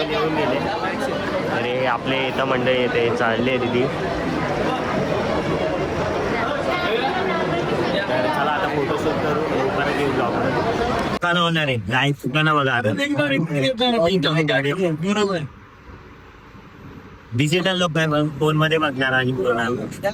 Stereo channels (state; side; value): identical; both; correlation 1.00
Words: येऊन गेले. अरे आपले इथं मंडळी येते चालले दिदी. तर चला आता फोटोशूट करू परत येऊ ब्लॉग. दुकानं होणार आहे गाय दुकानं बघा. डिजिटल लोक आहे फोन मध्ये बघणार आणि